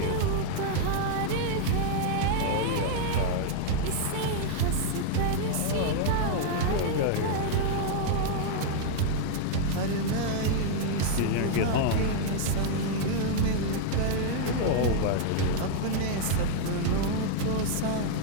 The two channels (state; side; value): different; both; correlation -0.01